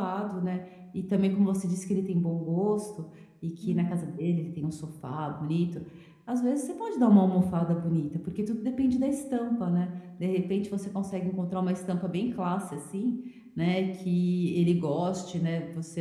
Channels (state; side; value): identical; both; correlation 1.00